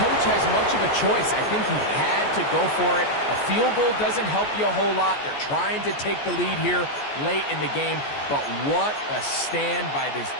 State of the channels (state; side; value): late; right; 14 ms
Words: has much of a choice. I think he had to go for it. A field goal doesn't help you a whole lot. They're trying to take the lead here late in the game. But what a stand by this